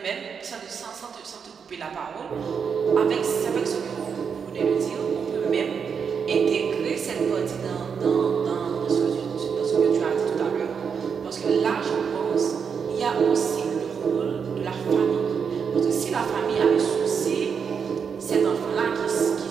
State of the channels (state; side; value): quieter; left; 6.5 dB